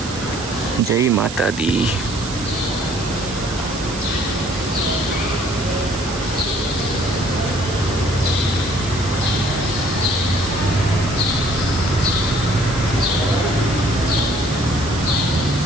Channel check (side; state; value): right; noise; hiss, 11 dB below the sound